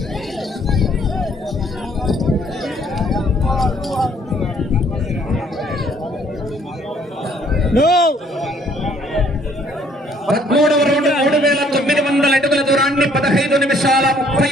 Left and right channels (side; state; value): both; normal; correlation 0.62